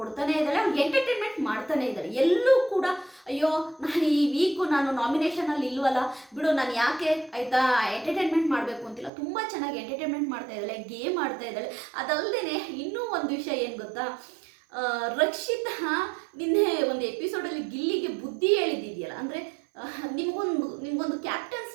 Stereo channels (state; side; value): drops out; left; at 9.1 s